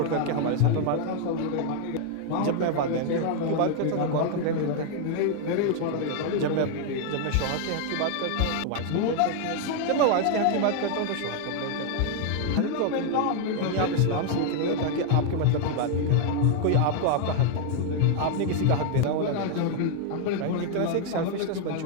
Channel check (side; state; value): both; different; correlation 0.00